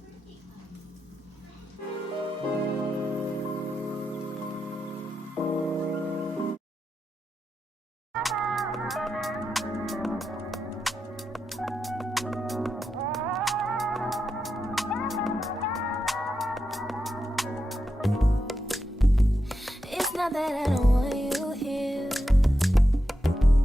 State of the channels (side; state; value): both; normal; correlation 0.87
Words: It's not that I don't want you here.